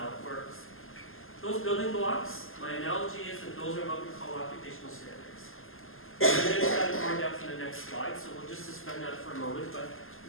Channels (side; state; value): right; late; 0.60 ms